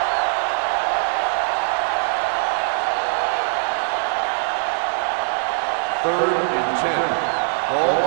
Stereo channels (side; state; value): left; silent; 55 dB below the other